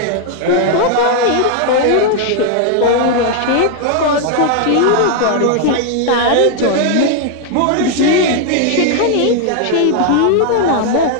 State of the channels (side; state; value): both; different; correlation 0.00